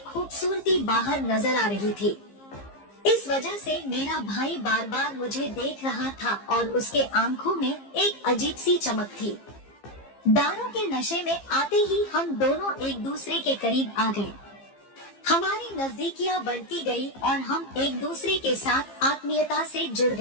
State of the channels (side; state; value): right; late; 15 ms